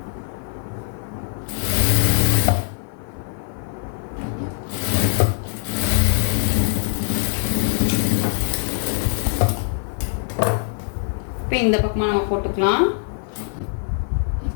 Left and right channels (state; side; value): silent; right; 56 dB below the other